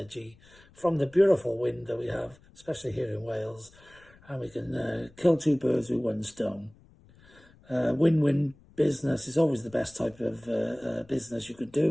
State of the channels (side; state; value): left; noise; rumble, 27 dB below the sound